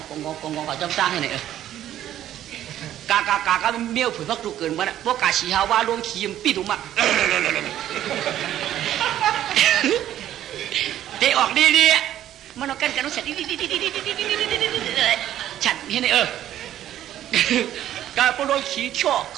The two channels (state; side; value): quieter; left; 12.0 dB